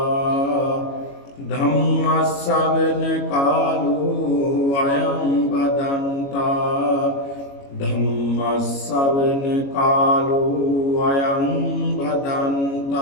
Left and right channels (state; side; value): late; right; 22 ms